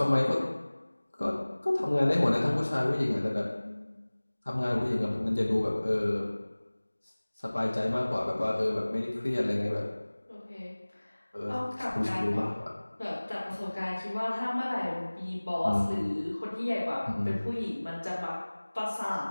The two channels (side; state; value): both; inverted; correlation -1.00